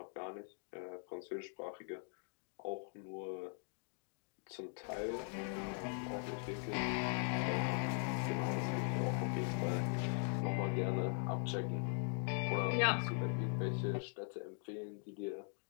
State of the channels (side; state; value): right; silent; 50 dB below the other